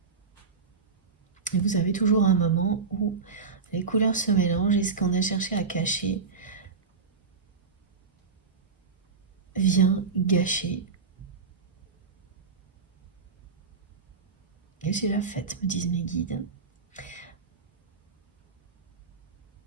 Et vous avez toujours un moment où les couleurs se mélangent et ce qu'on a cherché à cacher vient gâcher la fête, me disent mes guides.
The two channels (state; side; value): quieter; left; 5.0 dB